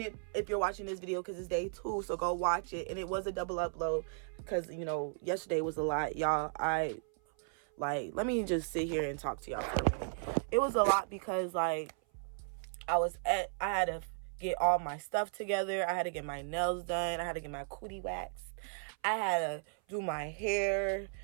if you're watching this video because it's day 2. So go watch it. And it was a double upload because, yesterday was a lot. Y'all, let me just sit here and talk to y'all for a minute. It was a lot because, I had to get all my stuff together. I had to get my nails done. I had to get my cootie waxed. I had to do my hair.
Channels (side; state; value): left; silent; 54 dB below the other